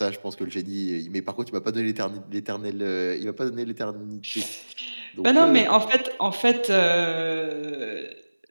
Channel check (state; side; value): inverted; both; correlation -1.00